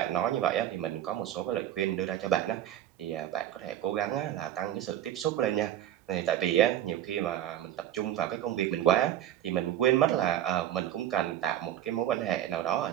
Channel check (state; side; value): quieter; left; 11.8 dB